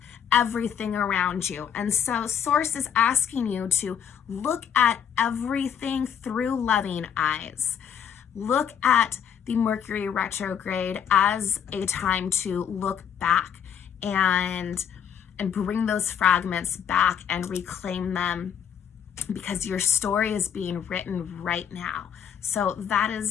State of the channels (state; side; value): quieter; right; 8.4 dB